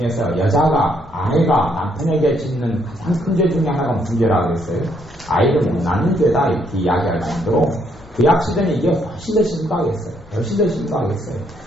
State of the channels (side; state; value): left; noise; hum, 27 dB below the sound